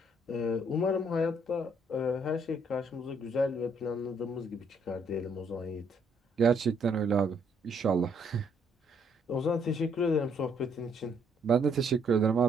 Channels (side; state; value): both; normal; correlation 0.69